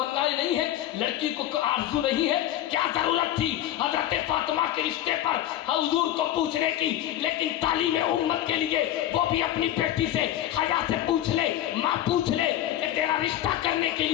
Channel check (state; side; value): quieter; right; 12.6 dB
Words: نہیں ہے؟ لڑکی کو آرزو نہیں ہے؟ کیا ضرورت تھی حضرت فاطمہ کے رشتے پر حضور کو پوچھنے کی؟ لیکن تعلیم امت کے لیے وہ بھی اپنی بیٹی سے حیا سے پوچھ لے، ماں پوچھ لے کہ تیرا رشتہ کرنے کے